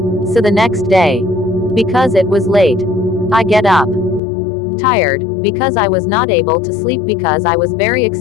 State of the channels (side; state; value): right; drops out; at 4.2 s